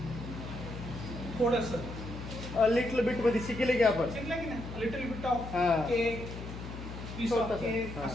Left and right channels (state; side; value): noise; left; hum, 10 dB below the sound